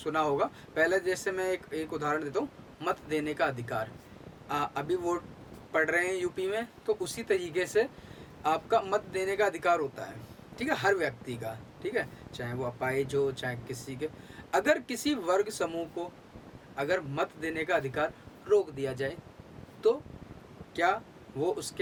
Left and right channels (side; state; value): both; identical; correlation 1.00